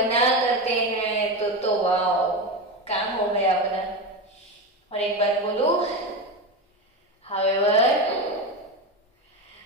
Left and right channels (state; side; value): normal; both; correlation 0.18